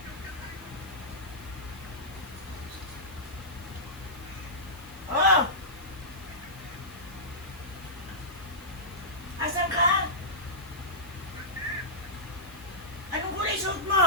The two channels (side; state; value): left; noise; hiss, 21 dB below the sound